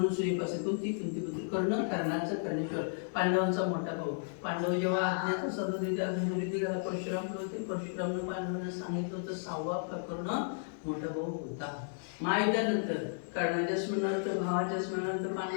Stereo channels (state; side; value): silent; right; 55 dB below the other